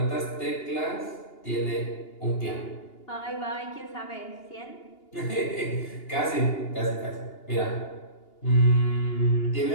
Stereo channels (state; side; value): late; right; 2.8 ms